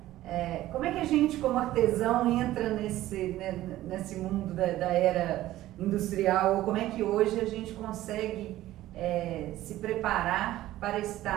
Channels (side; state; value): left; quieter; 15.0 dB